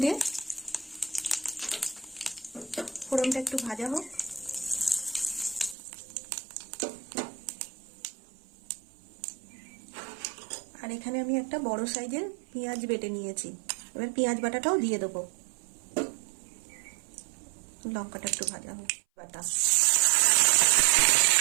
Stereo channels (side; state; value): left; drops out; at 5.8 s